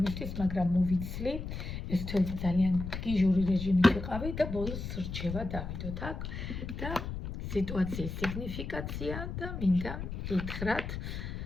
მაგრამ მოვიცლი. ეს თველი ძალიან გიჟური რეჟიმით ვიყავი და ბოლოს რჩევა დავიდოთ აქ და სიტუაციის სიგნიფიკაცია და მინდა გითხრათ,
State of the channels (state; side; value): noise; left; rumble, 6 dB below the sound